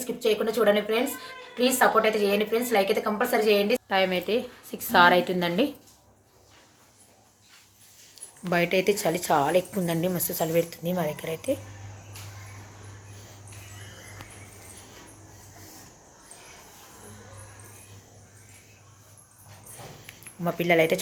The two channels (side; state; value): both; identical; correlation 1.00